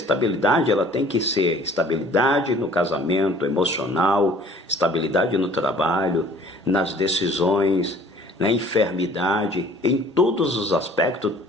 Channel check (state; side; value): normal; both; correlation 0.52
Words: ela tem que ser estabilidade no casamento emocional, estabilidade no trabalho, nas decisões, na enfermidade, em todos os aspectos,